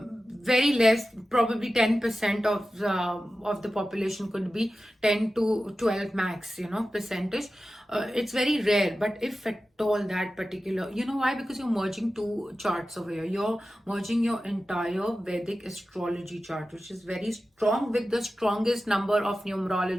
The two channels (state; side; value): normal; both; correlation 0.94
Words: less, probably 10% of the population, could be 10 to 12 max, percentage. it's very rare, but if at all that particular, you know why? Because you're merging two charts over here. You're merging your entire Vedic astrology chart, which is very strong, with the strongest number of